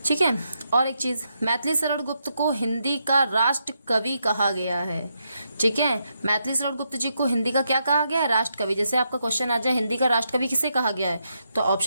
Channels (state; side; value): inverted; both; correlation -0.81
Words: ठीक है, और एक चीज, मैथिली शरण गुप्त को हिंदी का राष्ट्र कवि कहा गया है। ठीक है, मैथिली शरण गुप्त जी को हिंदी का क्या कहा गया है? राष्ट्र कवि। जैसे आपका क्वेश्चन आ जाए हिंदी का राष्ट्र कवि किसे कहा गया है, तो